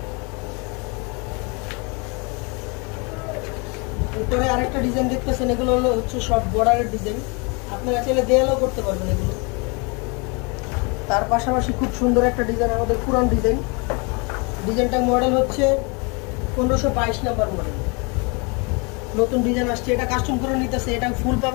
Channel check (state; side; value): quieter; right; 31.3 dB